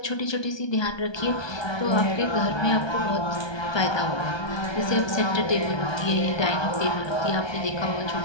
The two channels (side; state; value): right; late; 1.2 ms